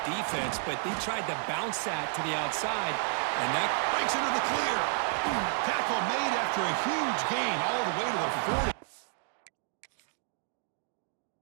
defense, but they tried to bounce that to the outside, and that breaks into the clear. Tackle made after a huge gain all the way to the 40.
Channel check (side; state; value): left; silent; 57 dB below the other